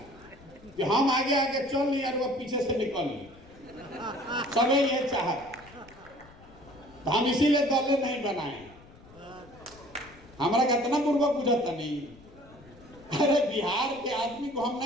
कि हम आगे आगे चल ली और वह पीछे से निकल ली, सब ये चाहता। तो हम इसीलिए दल नहीं बनाए। हमारा का इतना बुर्बक बुझता नहीं। अरे बिहार के आदमी को हम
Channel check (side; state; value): left; noise; rumble, 23 dB below the sound